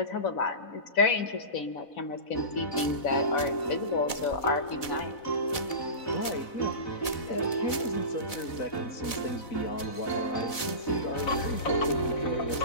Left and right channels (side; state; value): right; late; 4.0 ms